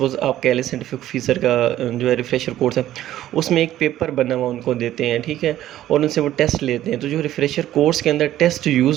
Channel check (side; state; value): left; quieter; 13.2 dB